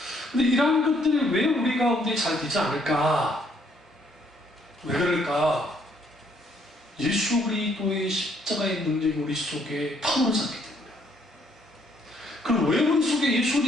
근데 이러한 것들이 왜 우리 가운데 잘 되지 않을까? 왜 그럴까? 예수 그리스도의 십자가의 능력이 우리 속에 타오르지 않기 때문에. 그럼 왜 우리 속에 예수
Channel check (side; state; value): both; normal; correlation 0.68